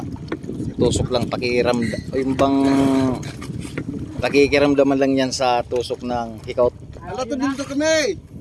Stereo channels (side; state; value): both; identical; correlation 1.00